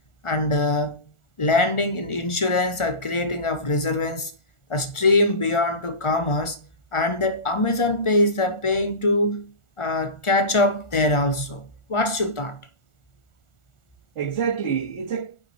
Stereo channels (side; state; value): right; late; 1.4 ms